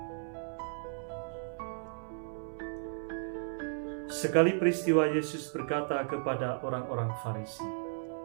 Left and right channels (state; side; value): silent; left; 55 dB below the other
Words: Sekali peristiwa Yesus berkata kepada orang-orang Farisi,